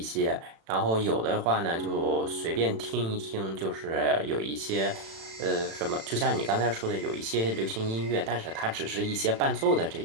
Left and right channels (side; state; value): left; late; 36 ms